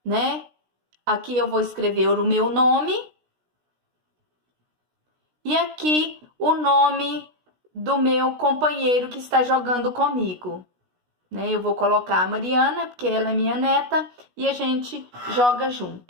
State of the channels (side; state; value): left; late; 16 ms